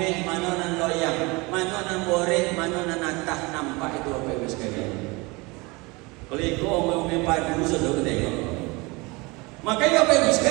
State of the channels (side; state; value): left; quieter; 25.3 dB